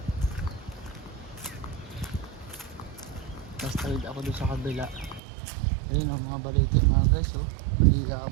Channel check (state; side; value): drops out; left; at 5.2 s